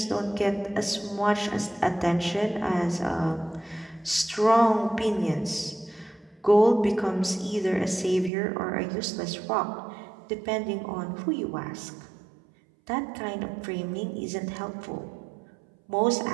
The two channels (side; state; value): left; drops out; at 8.3 s